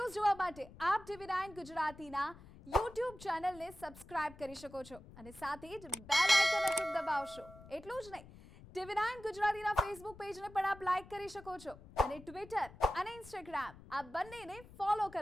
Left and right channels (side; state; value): left; noise; rumble, 19 dB below the sound